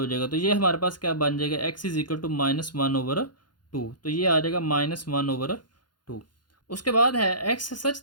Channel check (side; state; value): right; late; 0.71 ms